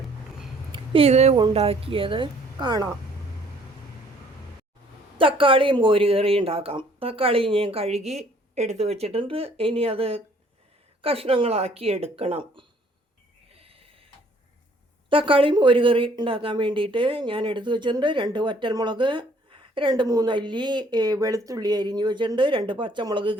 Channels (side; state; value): both; normal; correlation 0.60